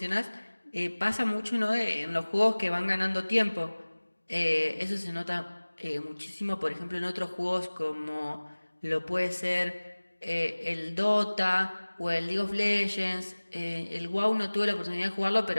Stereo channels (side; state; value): both; inverted; correlation -1.00